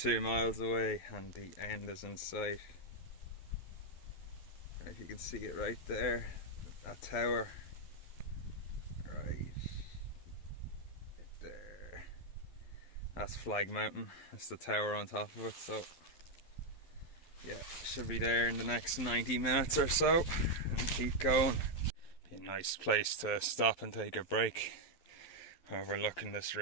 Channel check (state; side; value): late; right; 12 ms